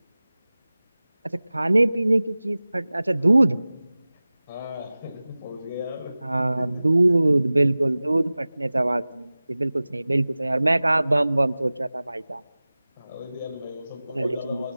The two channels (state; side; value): inverted; both; correlation -0.98